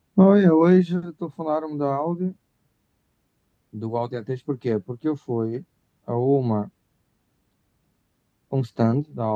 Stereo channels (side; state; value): both; identical; correlation 1.00